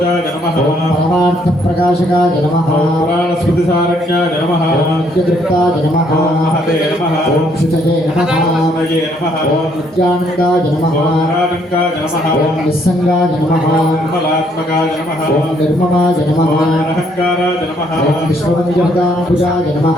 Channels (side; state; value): both; normal; correlation 0.68